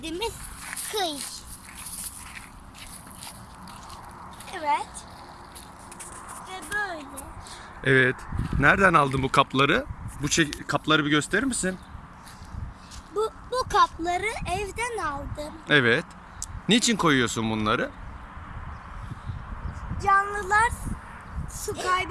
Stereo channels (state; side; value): identical; both; correlation 1.00